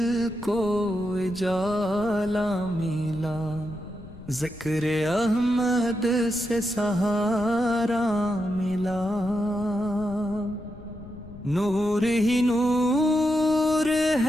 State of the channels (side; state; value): left; noise; rumble, 17 dB below the sound